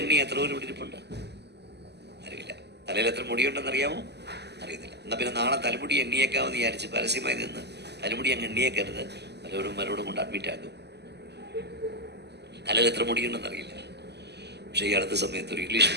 എത്ര പേര് പിടിച്ചിട്ടുണ്ട്? അറിയില്ല. തലയിൽ എത്ര മുടിയുണ്ടെന്ന് അറിയാമോ? അറിയത്തില്ല. എന്നാൽ പിന്നെ നാളെ തലമുടി എണ്ണിയേക്കാമെന്ന് വിചാരിച്ച് പരസ്യമായി നിന്ന് തലമുടി അങ്ങ് എണ്ണിയേക്കരുത്. മരോടും കൊണ്ട് അഡ്മിറ്റ് ആക്കും. തലയിൽ എത്ര മുടിയുണ്ടെന്ന് അറിയില്ല. പക്ഷേ ഈ അടുത്ത സമയത്ത് ഒരു ഇംഗ്ലീഷ്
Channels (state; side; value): late; left; 0.49 ms